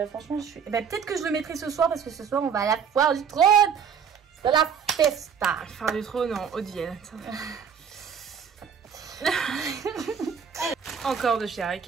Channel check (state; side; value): quieter; left; 7.0 dB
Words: franchement, je suis... peut-être que je le mettrai ce soir, parce que ce soir, on va à la foire du trône. C'est la festa. Faire du trône en Haute-Vienne. Encore de chez Art